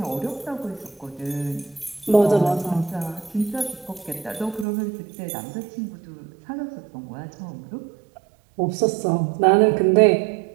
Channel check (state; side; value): drops out; left; at 4.7 s